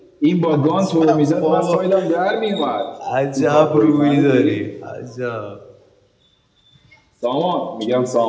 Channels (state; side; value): identical; both; correlation 1.00